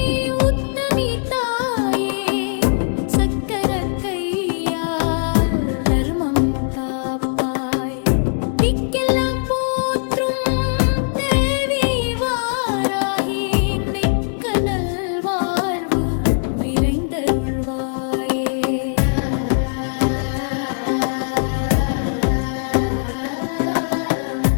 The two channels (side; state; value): right; silent; digital silence